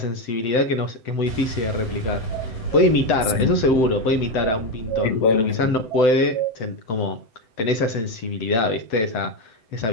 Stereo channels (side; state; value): right; late; 7.9 ms